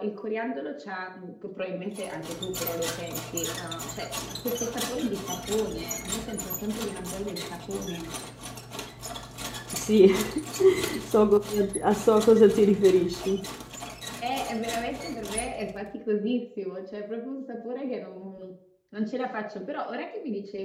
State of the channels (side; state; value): both; identical; correlation 1.00